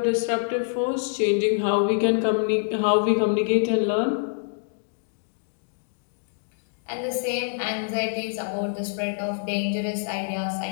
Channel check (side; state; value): right; silent; digital silence